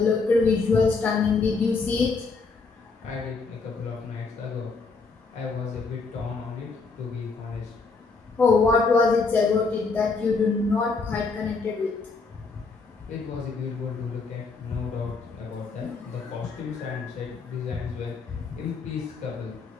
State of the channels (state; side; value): quieter; right; 4.2 dB